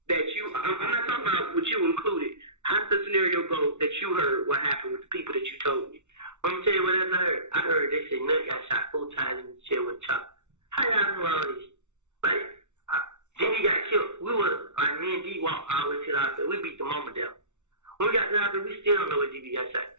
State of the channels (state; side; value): late; left; 0.84 ms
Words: that you, I'm not talking about what you included. How did the scenario go that you heard what happened with the people that you told me? Let me tell you what else I heard. I heard they said Nut got shot 4 times in the chair with a chop. How y'all know all this? Like, then he got killed. We were, like, me and D walked all the way to the hospital. We beat the mama down. When we got to the hospital, we still don't know what DB got shot.